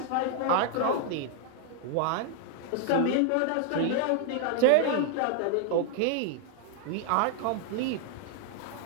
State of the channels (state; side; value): different; both; correlation 0.00